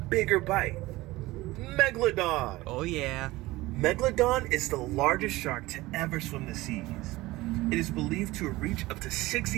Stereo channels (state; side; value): quieter; left; 19.2 dB